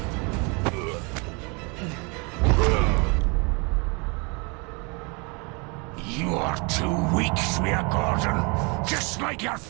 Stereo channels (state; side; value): quieter; left; 31.1 dB